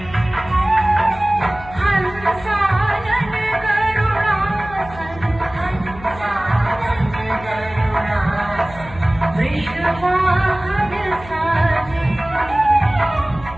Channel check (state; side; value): noise; left; hum, 17 dB below the sound